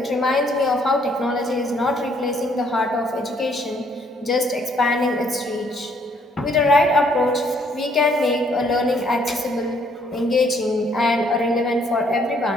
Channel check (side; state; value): both; normal; correlation 0.66